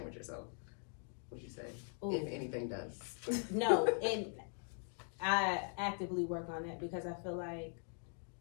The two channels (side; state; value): right; silent; 50 dB below the other